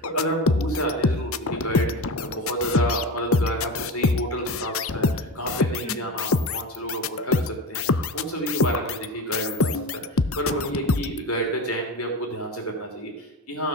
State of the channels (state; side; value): normal; both; correlation 0.25